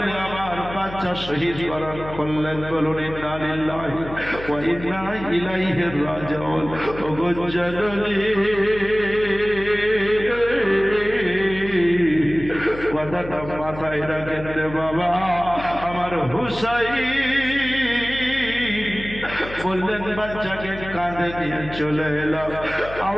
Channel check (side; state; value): left; noise; hum, 13 dB below the sound